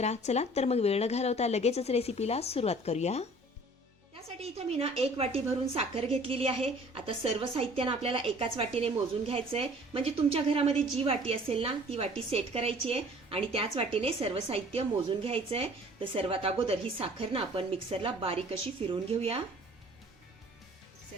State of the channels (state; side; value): normal; both; correlation 0.51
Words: चला तर मग वेळ न घालवता लगेचच रेसिपीला सुरुवात करूया. त्यासाठी इथं मी एक वाटी भरून साखर घेतलेली आहे. आता सर्व साहित्यानं आपल्याला एकाच वाटीने मोजून घ्यायचं आहे. म्हणजे तुमच्या घरामध्ये जी वाटी असेल ना ती वाटी सेट करायची आहे आणि त्याच वाटीने सर्व साहित्य मोजून घ्यायचं आहे. तर सर्वात अगोदर ही साखर ना आपण मिक्सरला बारीक अशी फिरवून घेऊया.